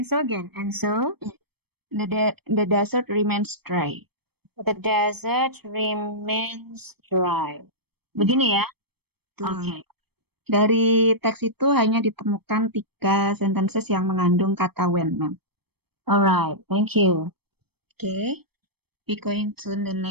And so the desert remains dry. the desert remains dry. Begini ya? Oke. Dari teks itu hanya ditemukan 3 sentences yang mengandung kata when, ma'am. Alright, thank you. Okay, we going to the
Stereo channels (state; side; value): late; left; 0.97 ms